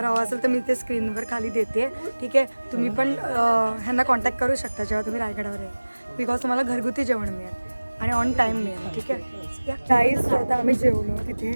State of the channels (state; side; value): inverted; both; correlation -1.00